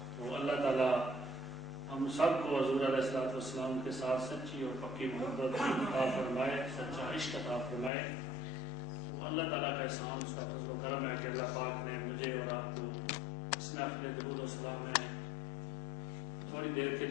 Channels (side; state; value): right; drops out; at 7.9 s